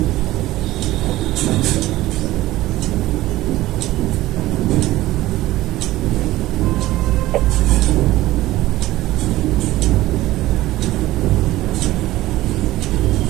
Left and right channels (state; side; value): quieter; left; 16.4 dB